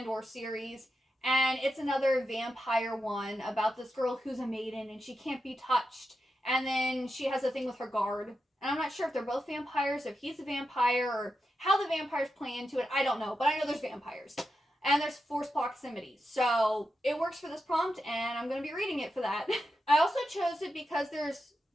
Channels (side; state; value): both; normal; correlation 0.88